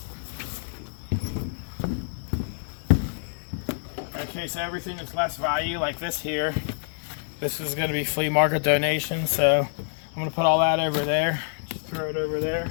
Okay, so everything that's less value, like this here, this is going to be flea market donation, so I'm going to put all that over there. Just throw it over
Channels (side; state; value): right; silent; digital silence